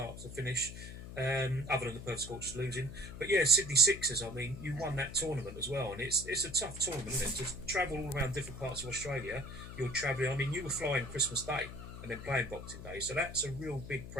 to finish, other than the Perth Scorchers losing. But yeah, Sydney Sixers, I mean, you won that tournament as well, and it's a tough tournament, isn't it? To travel all around different parts of Australia, you're travelling, I mean, you were flying Christmas Day and then playing Boxing Day, so that's a real big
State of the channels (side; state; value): left; noise; hum, 11 dB below the sound